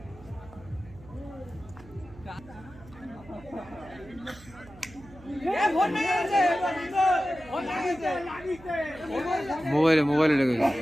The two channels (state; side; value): noise; right; hum, 21 dB below the sound